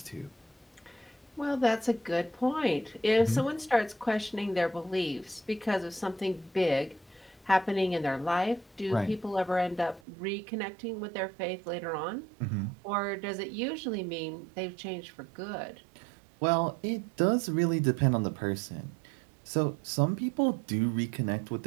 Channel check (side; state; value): left; drops out; at 10.0 s